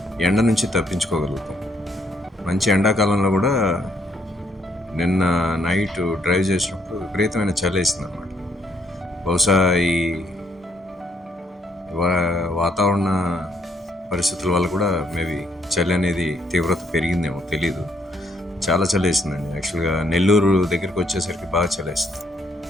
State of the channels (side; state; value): both; normal; correlation 0.70